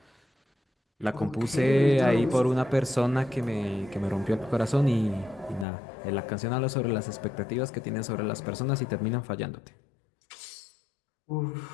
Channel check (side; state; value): right; drops out; at 5.7 s